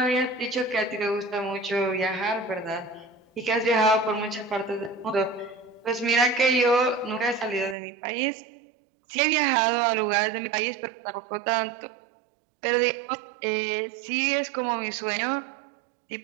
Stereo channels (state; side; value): drops out; left; at 7.8 s